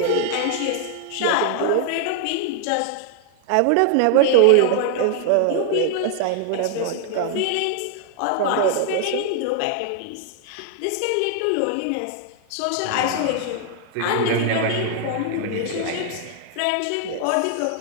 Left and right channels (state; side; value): different; both; correlation 0.00